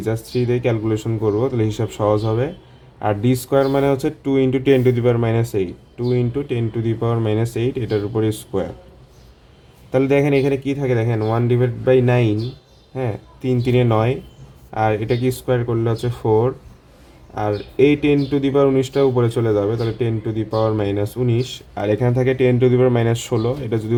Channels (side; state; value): both; identical; correlation 1.00